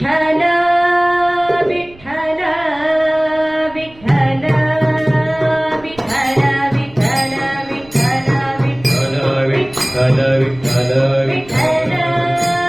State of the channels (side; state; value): right; noise; rumble, 23 dB below the sound